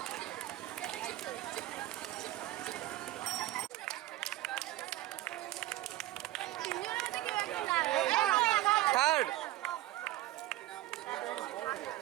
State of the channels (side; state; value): left; quieter; 16.1 dB